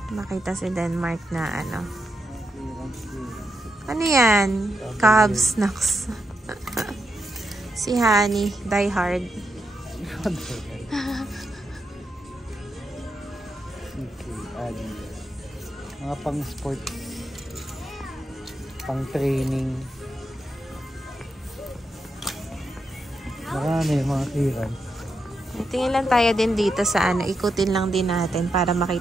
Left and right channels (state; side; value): normal; both; correlation 0.84